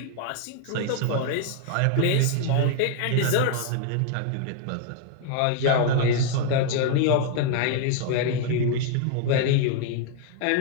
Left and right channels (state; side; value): different; both; correlation 0.00